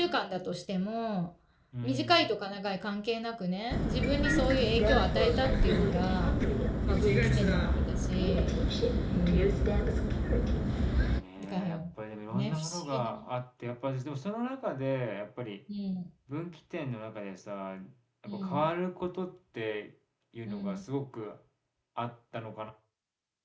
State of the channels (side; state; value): both; identical; correlation 1.00